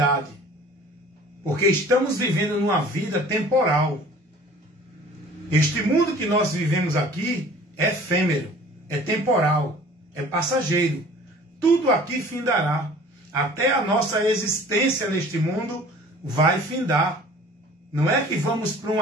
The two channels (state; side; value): normal; both; correlation 0.48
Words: Porque estamos vivendo numa vida temporal. Este mundo que nós vivemos aqui é efêmero, é temporal, é passageiro. Tudo aqui findará. Até a nossa existência neste mundo vai findar. Não é que vamos para